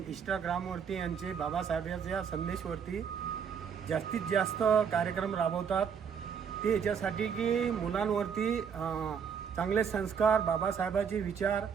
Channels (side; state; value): left; quieter; 7.1 dB